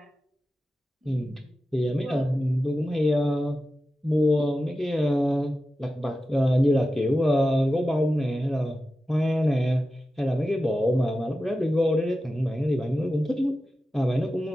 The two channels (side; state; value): both; normal; correlation 0.93